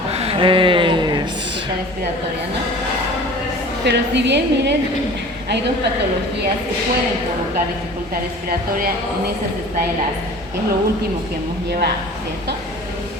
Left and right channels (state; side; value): normal; both; correlation 0.43